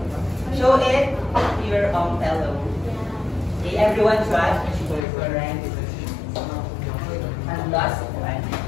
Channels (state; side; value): drops out; right; at 5.1 s